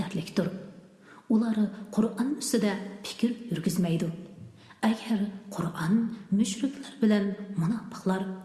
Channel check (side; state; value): both; identical; correlation 1.00